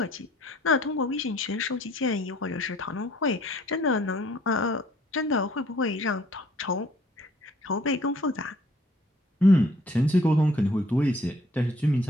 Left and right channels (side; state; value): both; normal; correlation 0.59